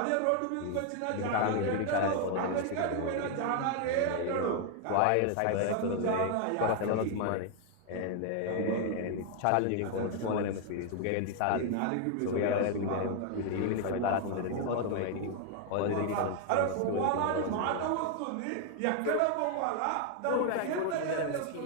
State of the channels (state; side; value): different; both; correlation 0.00